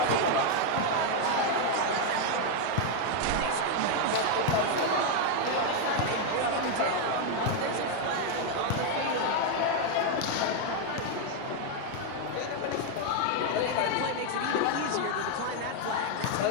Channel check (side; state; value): both; different; correlation 0.01